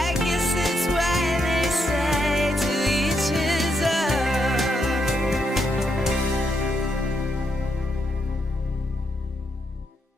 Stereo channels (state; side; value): normal; both; correlation 0.79